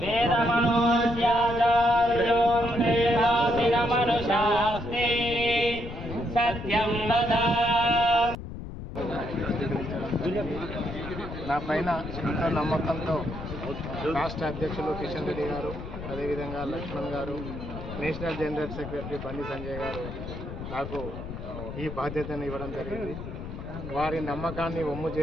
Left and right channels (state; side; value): noise; left; rumble, 9 dB below the sound